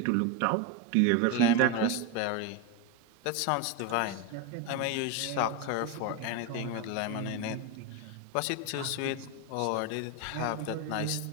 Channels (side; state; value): both; different; correlation 0.03